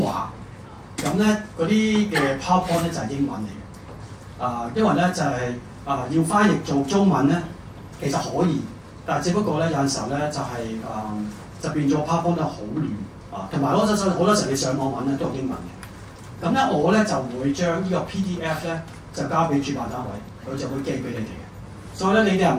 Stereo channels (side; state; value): both; identical; correlation 1.00